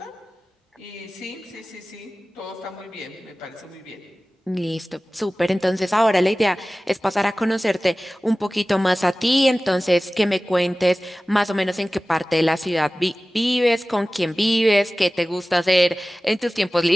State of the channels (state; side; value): normal; both; correlation 0.97